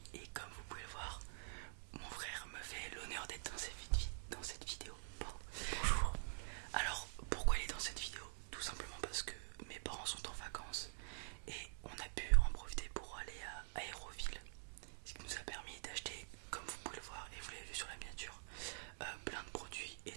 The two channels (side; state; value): left; silent; digital silence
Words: et comme vous pouvez le voir, mon frère me fait l'honneur d'être dans cette vidéo. Pardon. Bonjour. Alors pourquoi il est dans cette vidéo? Tout simplement parce que mes parents sont en vacances et on a pu en profiter pour aller à Aéroville. Ce qui nous a permis d'acheter, comme vous pouvez le voir et vous l'avez vu sur la miniature, plein de produits